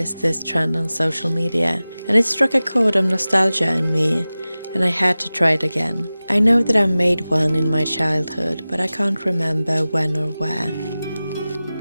this trend on social media, and it struck a chord of nostalgia in me, and I had to try it again. I know that I made one in my childhood, but I can't remember when or where.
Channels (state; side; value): inverted; both; correlation -0.97